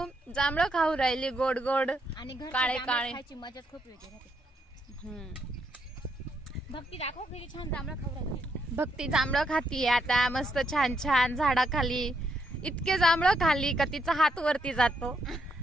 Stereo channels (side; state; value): both; normal; correlation 0.77